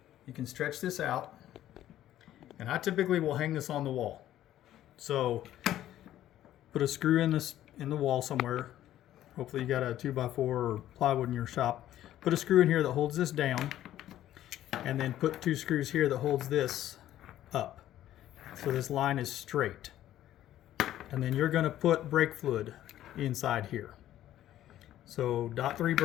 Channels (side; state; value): right; quieter; 12.7 dB